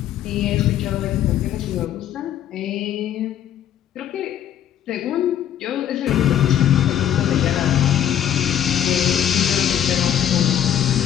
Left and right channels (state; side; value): quieter; right; 10.3 dB